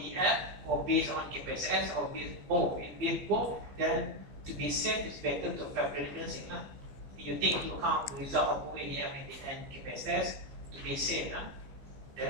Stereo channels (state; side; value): late; left; 15 ms